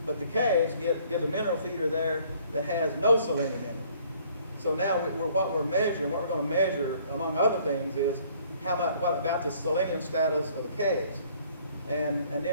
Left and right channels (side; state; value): both; inverted; correlation -0.59